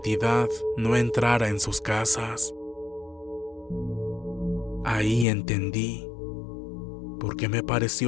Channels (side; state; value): right; drops out; at 5.2 s